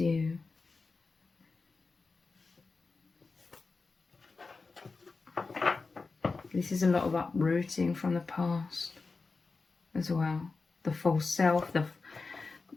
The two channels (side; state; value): right; quieter; 4.1 dB